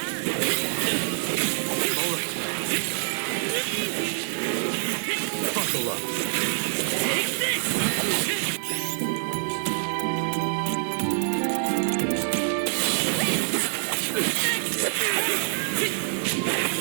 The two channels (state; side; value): silent; left; digital silence